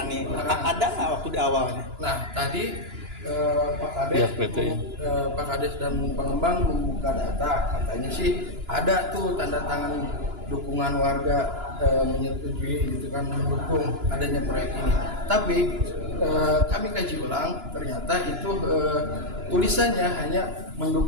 Ada nggak waktu di awalnya? Nah tadi Pak Kades dan pengembang membuka data, katanya sih ada tuh tanda tangan dukungan warga menyetujui gitu kan, mendukung adanya proyek ini. Tapi kami kaji ulang, ternyata itu tulisannya hanya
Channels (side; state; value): left; late; 2.9 ms